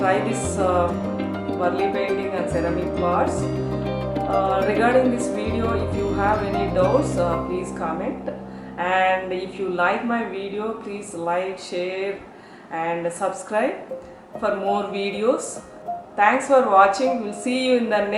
try this Warli painting and ceramic pots. Regarding this video, if you have any doubts, please comment. And if you like my video, please like, share and subscribe for more videos. Thanks for watching. We'll see you in the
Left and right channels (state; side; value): identical; both; correlation 1.00